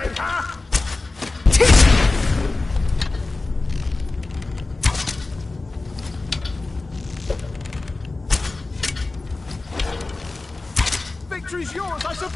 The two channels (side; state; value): right; quieter; 3.3 dB